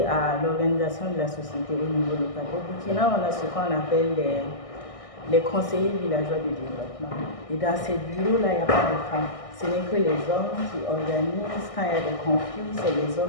à l'organisation de la société au niveau local. Au Burkina, on a ce qu'on appelle les conseillers villageois de développement. Et dans ces bureaux-là, il n'y a pas de femmes. Ce n'est que les hommes qui organisent. Quand il y a des conflits, c'est les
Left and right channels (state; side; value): late; right; 1.6 ms